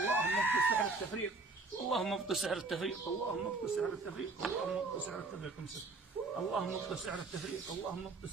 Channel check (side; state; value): left; quieter; 3.7 dB